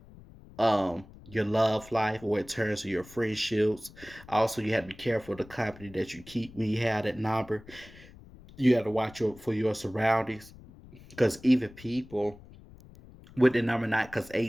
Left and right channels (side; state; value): left; noise; rumble, 20 dB below the sound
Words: your love life, or in terms of your friendships. Also, you have to be careful of the company that you keep when you have that number. You have to watch for your surroundings, because even people with the number nine, because